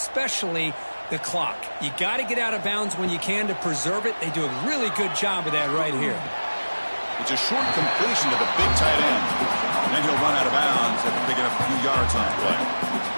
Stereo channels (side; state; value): both; inverted; correlation -1.00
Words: the clock. You got to get out of bounds when you can to preserve it. They do a really good job of that right here. It's a short completion to the big tight end. And then he'll run out of bounds after picking up a few yards on that play.